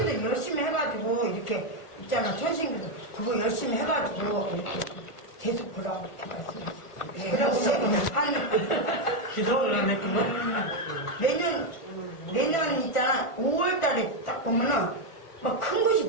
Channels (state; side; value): late; right; 1.4 ms